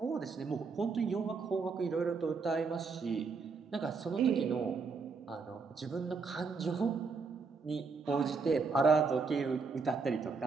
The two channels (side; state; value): left; quieter; 4.8 dB